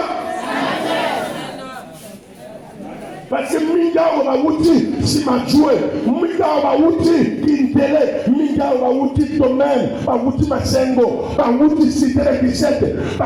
Parce que minga o ba wuti si ma jouer, minga o ba wuti kindele, minga o ba wuti domaine, ba wuti masengo, ba wuti sitere bisete,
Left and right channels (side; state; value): both; identical; correlation 1.00